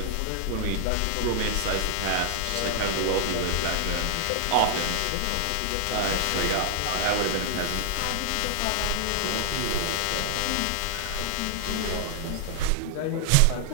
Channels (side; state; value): both; different; correlation 0.00